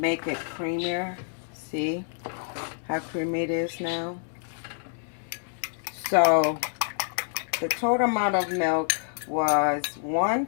it creamier. See how creamy it is now? So the total amount of milk was 1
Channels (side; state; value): right; silent; digital silence